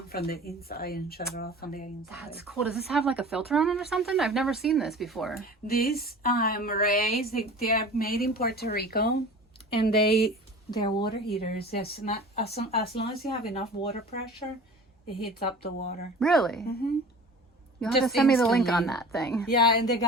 from the inside and shut it off on the inside. That's cool. Does this have like a filter on it or something? I've never seen this before. These marays, they are made in Puerto Rico, and they're water heaters. It's not, as long as you have enough water pressure, it heats up the water. Really? You'll have to send me the link on instantly. that thing. Yeah, and the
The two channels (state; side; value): normal; both; correlation 0.40